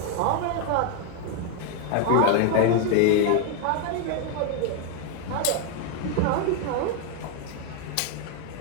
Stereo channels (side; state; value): both; different; correlation 0.01